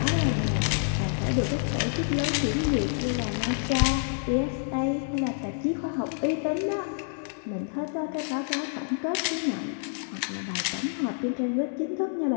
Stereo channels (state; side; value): silent; right; digital silence